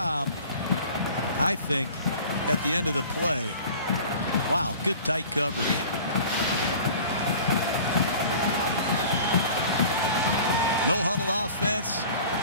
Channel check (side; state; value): both; inverted; correlation -0.43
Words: I think, at the end of the play. Wow, good tight coverage. No huddle offense.